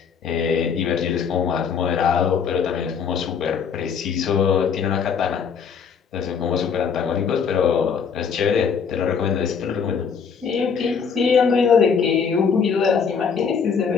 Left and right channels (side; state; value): right; quieter; 6.4 dB